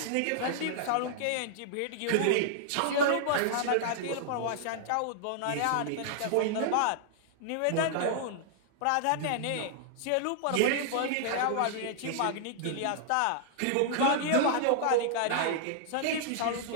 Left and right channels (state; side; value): different; both; correlation -0.01